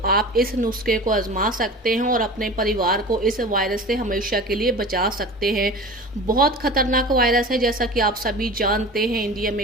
आप इस नुस्खे को आजमा सकते हैं और अपने परिवार को इस वायरस से हमेशा के लिए बचा सकते हैं। बहुत खतरनाक वायरस है, जैसा कि आप सभी जानते हैं, इंडिया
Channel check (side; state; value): both; normal; correlation 0.36